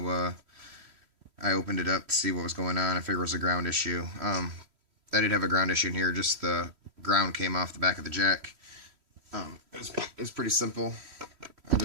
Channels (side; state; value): left; late; 3.1 ms